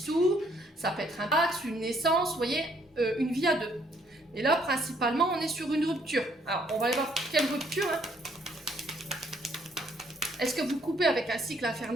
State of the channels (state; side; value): normal; both; correlation 0.67